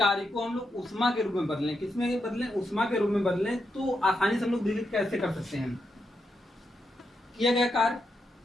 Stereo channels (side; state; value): both; normal; correlation 0.84